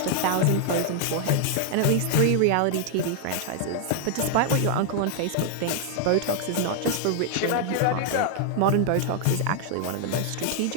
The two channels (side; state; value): both; different; correlation 0.00